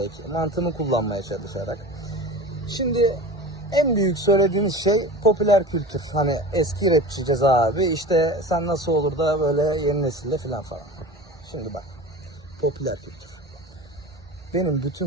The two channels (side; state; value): both; normal; correlation 0.34